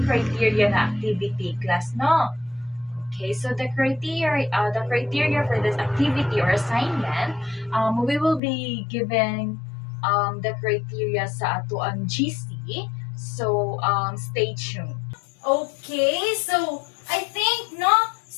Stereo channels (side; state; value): right; drops out; at 8.4 s